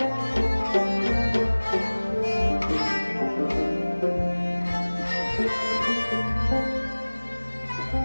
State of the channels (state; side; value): inverted; both; correlation -1.00